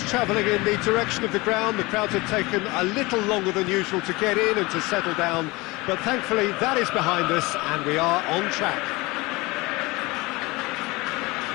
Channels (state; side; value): quieter; right; 23.0 dB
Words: travelling in the direction of the ground. The crowds had taken a little longer than usual to get in and to settle down, but thankfully that is behind us, and we are on track.